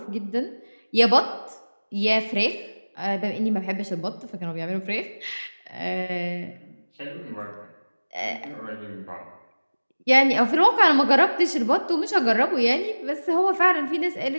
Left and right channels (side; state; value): both; inverted; correlation -1.00